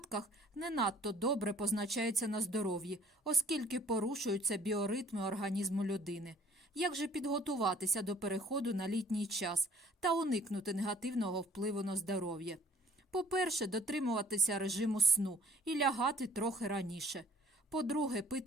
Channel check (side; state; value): both; normal; correlation 0.55